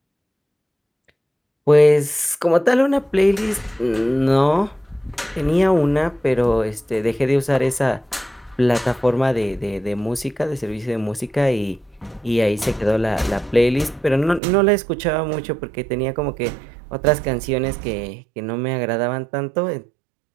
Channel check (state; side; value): drops out; left; at 14.4 s